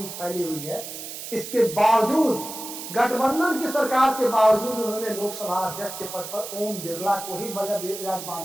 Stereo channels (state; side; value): noise; right; hiss, 9 dB below the sound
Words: फैली हुई है, इसके बावजूद, गठबंधन की सरकार के बावजूद उन्होंने लोकसभा अध्यक्ष के पद पर ओम बिरला को ही